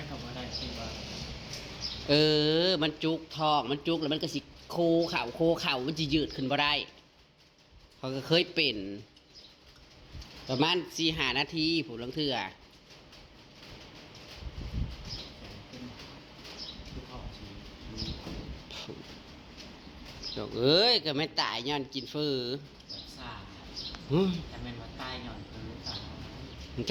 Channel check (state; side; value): identical; both; correlation 1.00